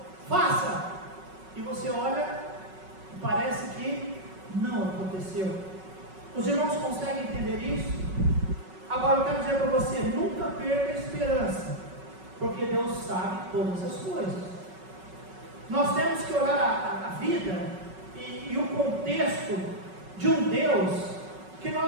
faça, e você olha e parece que não aconteceu. Os irmãos conseguem entender isso? Agora eu quero dizer para você: nunca perca a esperança, porque Deus sabe todas as coisas. Nós temos que olhar a vida e o contexto de um Deus que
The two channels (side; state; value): left; late; 5.3 ms